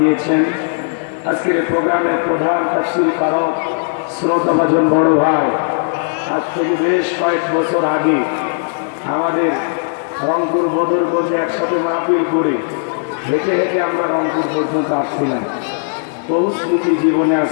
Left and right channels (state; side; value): silent; right; digital silence